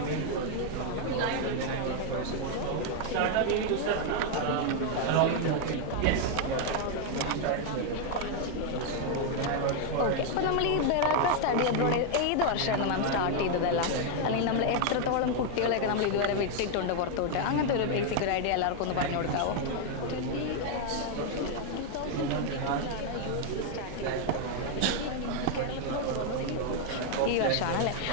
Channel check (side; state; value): both; different; correlation 0.00